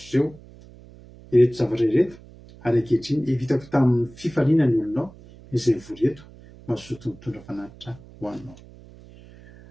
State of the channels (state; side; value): noise; right; hum, 21 dB below the sound